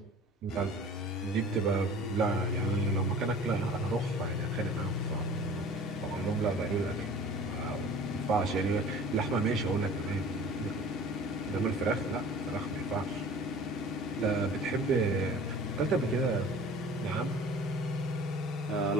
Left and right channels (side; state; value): both; normal; correlation 0.45